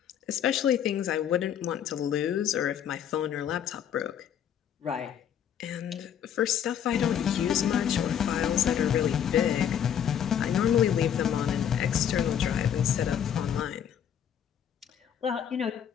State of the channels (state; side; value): quieter; right; 9.1 dB